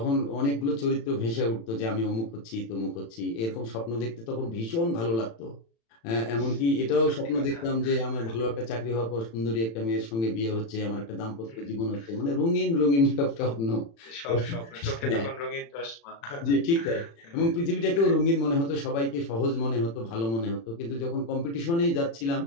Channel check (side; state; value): right; late; 35 ms